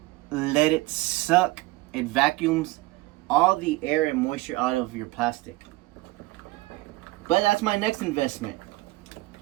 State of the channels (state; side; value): quieter; left; 20.1 dB